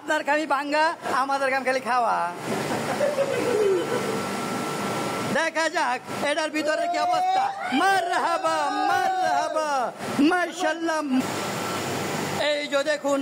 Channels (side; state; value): both; identical; correlation 1.00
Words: খালি ভাঙ্গা, আমাদের কাম খালি খাওয়া। দেখা যাক এটার ভিতরে কি অবস্থা। মারহাবা মারহাবা মাশাআল্লাহ। এই যে দেখুন